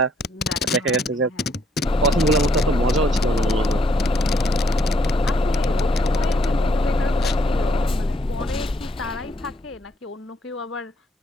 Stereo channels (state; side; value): normal; both; correlation 0.71